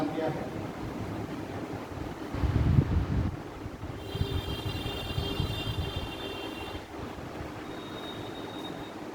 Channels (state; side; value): identical; both; correlation 1.00